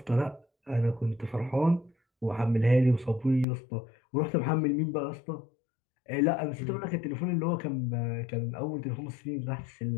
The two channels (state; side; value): drops out; right; at 3.5 s